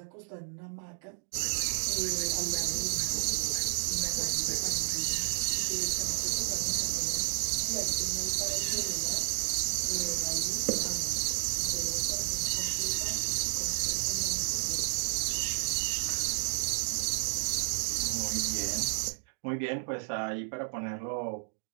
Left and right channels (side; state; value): left; silent; digital silence